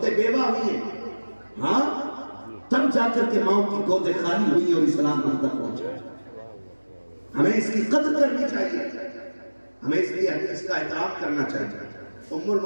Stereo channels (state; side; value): inverted; both; correlation -1.00